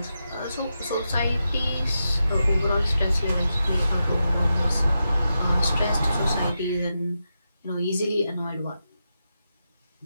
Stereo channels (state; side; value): inverted; both; correlation -0.88